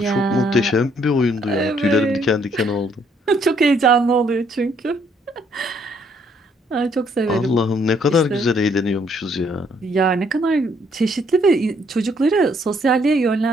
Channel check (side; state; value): both; normal; correlation 0.68